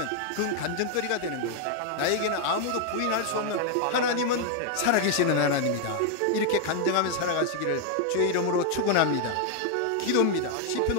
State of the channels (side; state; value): both; different; correlation 0.00